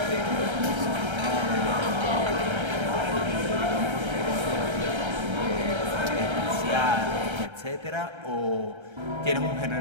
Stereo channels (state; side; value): late; left; 1.3 ms